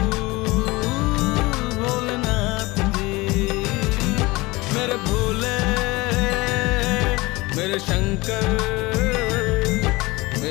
भोलेनाथ जी। मेरे भोले, मेरे शंकर,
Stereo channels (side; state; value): right; quieter; 22.1 dB